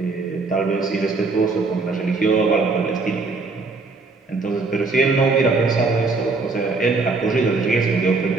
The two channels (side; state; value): left; quieter; 3.9 dB